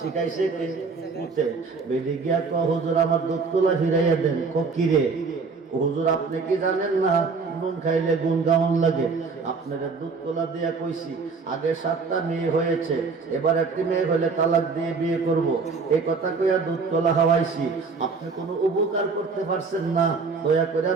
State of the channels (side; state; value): left; quieter; 4.7 dB